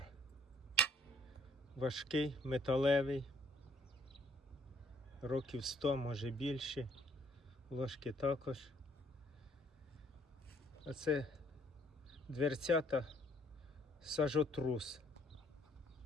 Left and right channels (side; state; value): both; normal; correlation 0.62